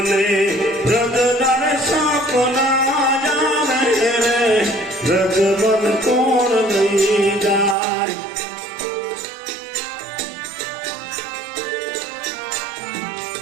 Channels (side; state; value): left; drops out; at 7.8 s